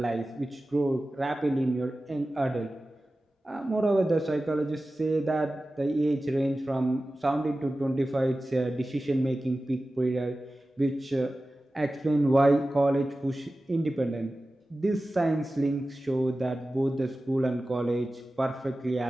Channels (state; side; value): normal; both; correlation 0.95